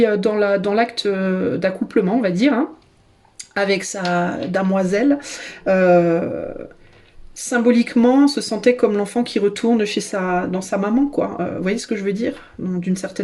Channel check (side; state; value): both; identical; correlation 1.00